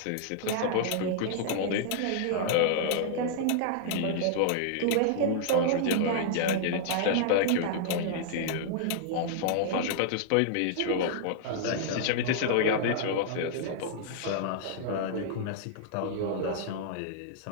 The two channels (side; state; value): both; different; correlation -0.01